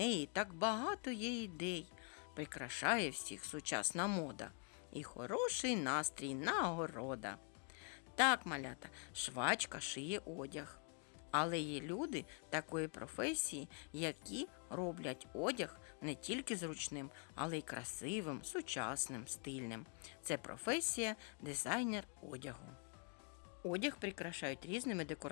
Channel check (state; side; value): quieter; right; 37.6 dB